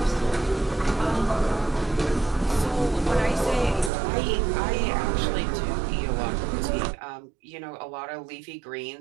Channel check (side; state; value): left; drops out; at 3.9 s